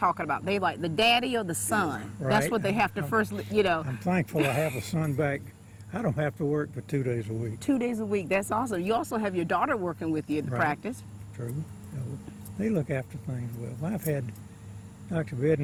about, they like the daddy or the son. Right. That's what they have to first, you know. I'm thankful I have a son back. I don't have to work but 2 days a week. 2 days a week, that's awesome. You also have your daughter working with you at the practice. True. So they look after things well. I've had Dr.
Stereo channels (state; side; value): identical; both; correlation 1.00